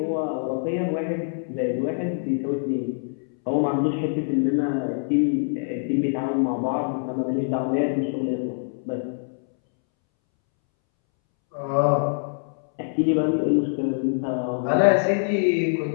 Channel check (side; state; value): right; silent; 62 dB below the other